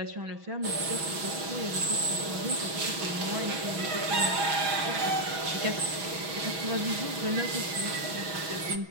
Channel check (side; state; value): left; late; 6.1 ms